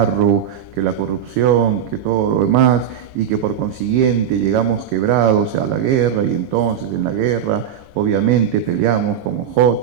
que la corrupción, que todo lo demás, y que por consiguiente llegamos quebrados a la guerra, y entonces en la guerra obviamente peleamos como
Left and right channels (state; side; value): quieter; left; 9.0 dB